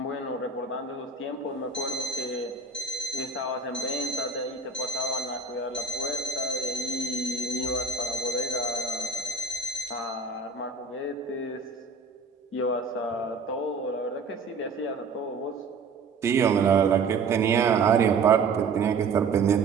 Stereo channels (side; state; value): left; quieter; 4.4 dB